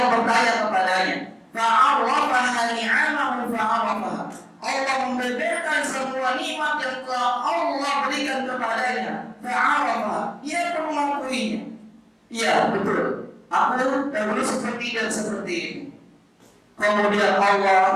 bertanya kepadanya, fa'arrafaha ni'amahu fa'arrafaha, Allah membeberkan semua nikmat yang telah Allah berikan kepadanya. Fa'arrafaha, ia pun mengakuinya. Iya, betul, aku dahulu seperti dan seperti ini. Kemudian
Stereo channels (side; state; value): both; identical; correlation 1.00